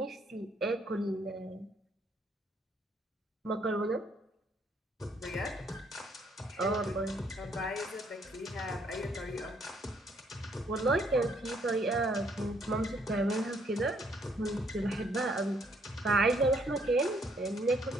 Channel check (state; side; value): normal; both; correlation 0.68